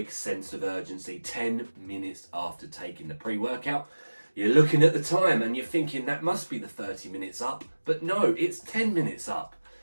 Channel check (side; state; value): both; inverted; correlation -1.00